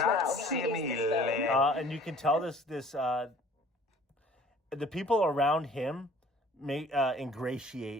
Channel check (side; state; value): both; normal; correlation 0.52